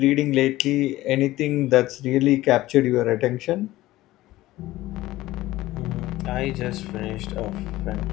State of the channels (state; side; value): quieter; right; 16.8 dB